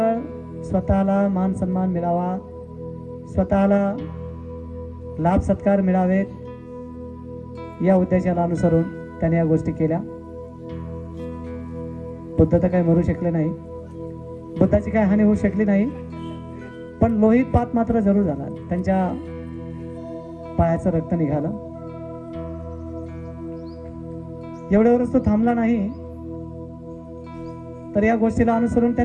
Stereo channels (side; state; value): both; identical; correlation 1.00